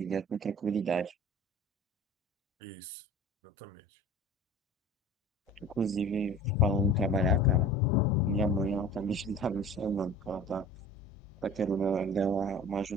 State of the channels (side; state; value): both; normal; correlation 0.41